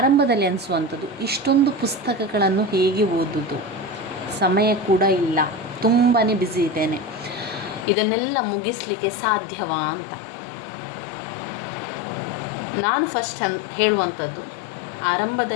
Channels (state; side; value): drops out; right; at 7.9 s